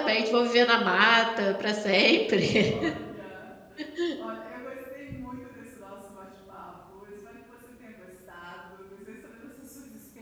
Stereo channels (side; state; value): both; identical; correlation 1.00